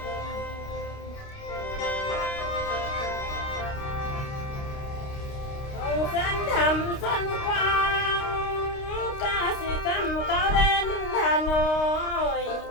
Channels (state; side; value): late; right; 29 ms